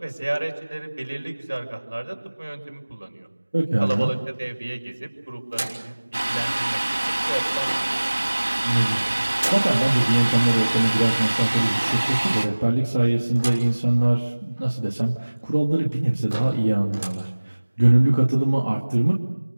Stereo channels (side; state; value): both; inverted; correlation -1.00